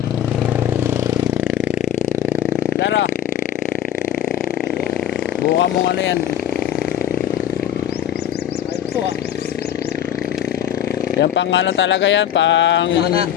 Tara. Buka mong ano yan. Ito ah. Yan pang ano talaga yan, pang... Mana.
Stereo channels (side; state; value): right; quieter; 10.4 dB